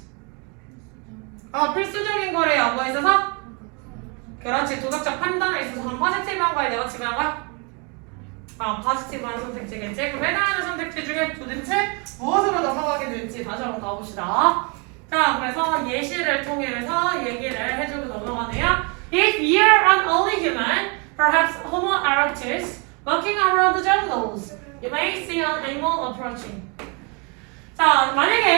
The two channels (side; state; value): left; quieter; 32.9 dB